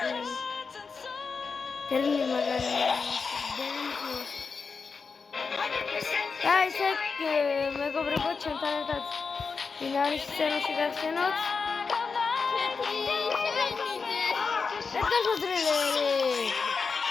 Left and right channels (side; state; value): right; quieter; 5.0 dB